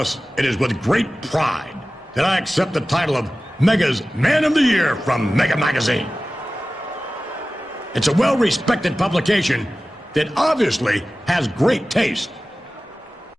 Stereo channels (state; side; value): normal; both; correlation 0.96